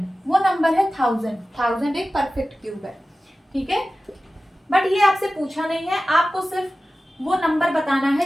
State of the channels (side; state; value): both; normal; correlation 0.95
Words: वो नंबर है 1000। 1000 एक परफेक्ट क्यूब है, ठीक है। बट ये आपसे पूछा नहीं है, आपको सिर्फ वो नंबर बताना